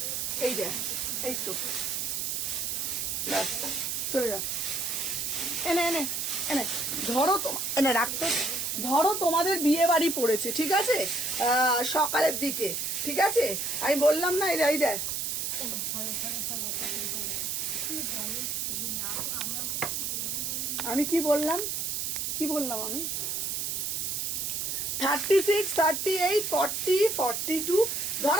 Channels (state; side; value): noise; right; hiss, 1 dB below the sound